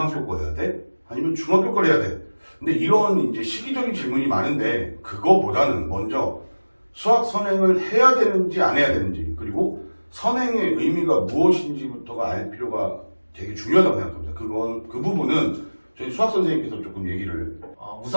거 해야 돼? 아니면 중학교 거 해야 돼? 근데 이런 이제 시기적인 질문이 많은데 그거보다는 먼저 수학 선행을 해야 되는지 안 해야 되는지, 그리고 선행의 의미가 무엇인지부터가 알 필요가 되게 중요하다고 생각합니다. 그 부분은 저희 수학 선생님께서 조금 얘기를.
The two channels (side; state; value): both; inverted; correlation -1.00